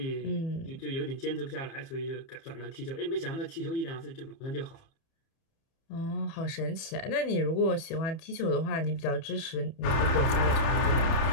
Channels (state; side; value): late; right; 30 ms